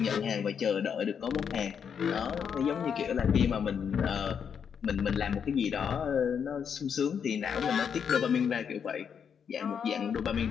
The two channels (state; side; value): quieter; right; 7.3 dB